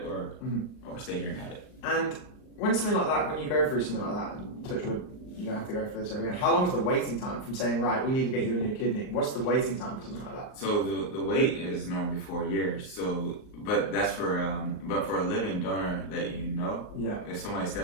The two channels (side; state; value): right; late; 38 ms